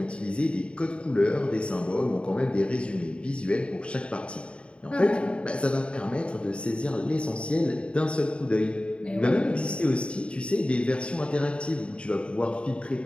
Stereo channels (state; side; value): late; right; 0.057 ms